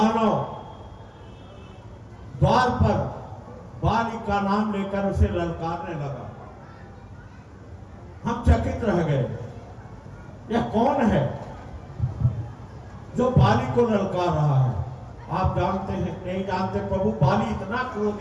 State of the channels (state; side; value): identical; both; correlation 1.00